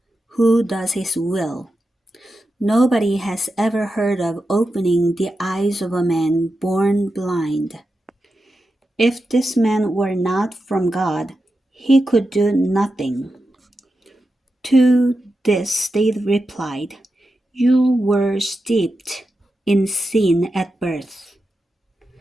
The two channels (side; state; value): both; normal; correlation 0.89